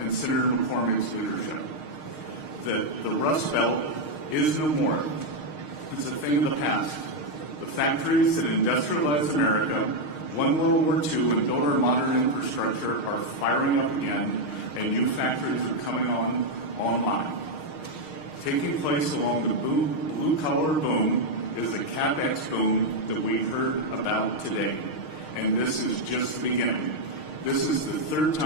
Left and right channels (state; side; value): late; right; 6.5 ms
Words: and Senator McCormick's leadership. The Rust Belt is no more. It's a thing of the past. The factories that industrialized America, won World War II, and built our modern infrastructure are firing up again, and new factories are coming online. Taking place along the blue-collar boom is the CapEx boom that we heard about today, and this is just the beginning. This is the 3rd